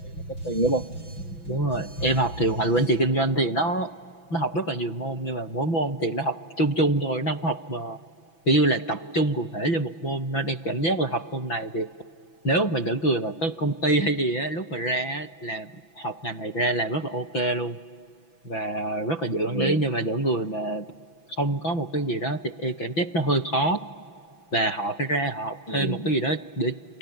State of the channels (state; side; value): late; right; 6.0 ms